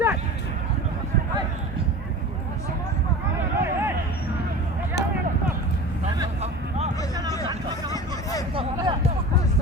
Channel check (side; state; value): both; normal; correlation 0.35